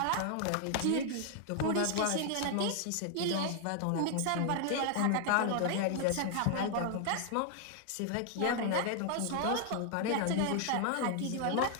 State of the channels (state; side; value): different; both; correlation 0.00